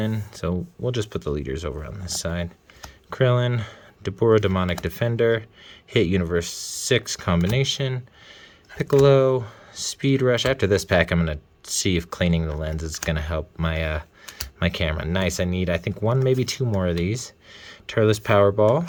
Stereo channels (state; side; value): identical; both; correlation 1.00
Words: So we'll just put the leaders over on this side. Krillin, Dabura Demonic Defender, Hit Universe 6 combination, Piccolo, Speed Rush. After this pack, I'm going to see if cleaning the lens is going to help my my camera. Nice. I need, I think, 1, maybe 2 more of these. Turles Powerball,